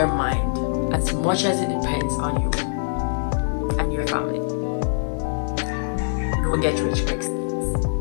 mind, as much as it depends on you and your family. Don't get rich quick schemes.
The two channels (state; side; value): silent; right; digital silence